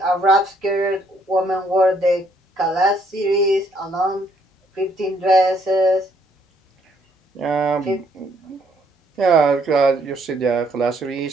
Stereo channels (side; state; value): both; normal; correlation 0.68